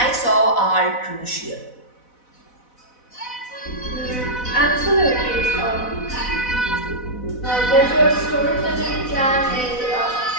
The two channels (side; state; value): right; late; 4.0 ms